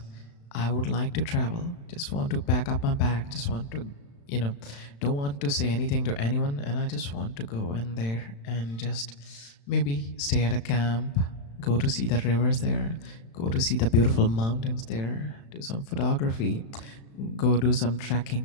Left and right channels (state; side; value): late; right; 35 ms